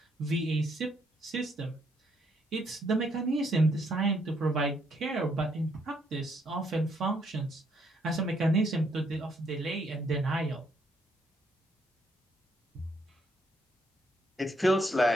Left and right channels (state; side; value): normal; both; correlation 0.72